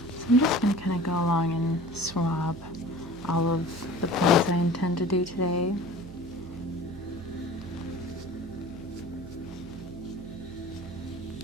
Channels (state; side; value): noise; right; hum, 16 dB below the sound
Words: I'm just going to kind of go along and swab all of the points I intend to do today.